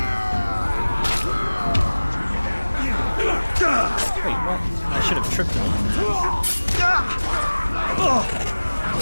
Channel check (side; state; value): both; inverted; correlation -1.00